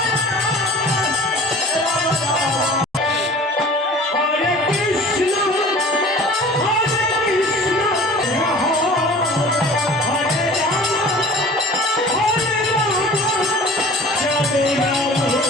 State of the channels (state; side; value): normal; both; correlation 0.44